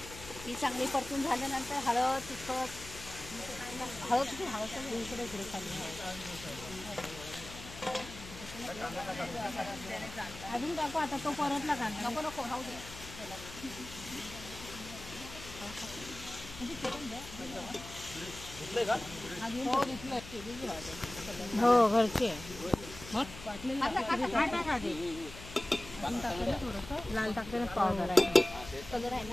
ती चांगली परतून झाल्यानंतर हळद तिखट हळद इकडे खाली अजून टाकू. आता तो परतला कांदा नको राहू दे. हो घरचे लाल टाकते पावडर आहे कलर आहे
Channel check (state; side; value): noise; left; hum, 14 dB below the sound